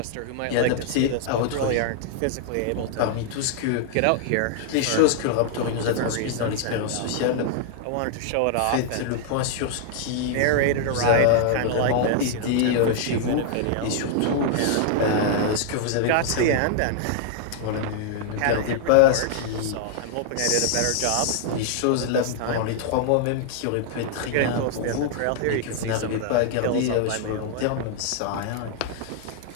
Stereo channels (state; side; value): different; both; correlation -0.01